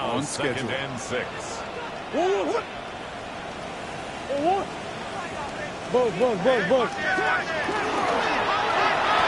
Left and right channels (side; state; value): both; identical; correlation 1.00